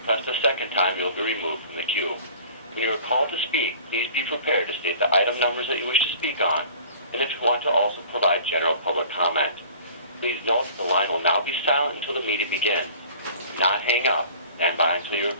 press the second time, you'll be removed from the queue. When you are called to speak, please be prepared to state the item numbers that you wish to speak on, and if you want to also provide general public comment. Please note that the line will now be silent until the meeting begins. Do not hang up. Stand by until you are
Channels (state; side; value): inverted; both; correlation -0.47